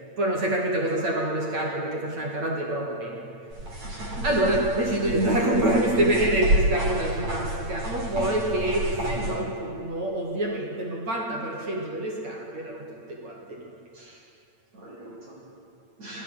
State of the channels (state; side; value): late; left; 8.8 ms